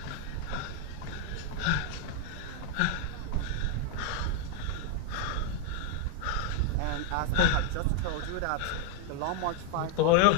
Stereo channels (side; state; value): both; different; correlation 0.00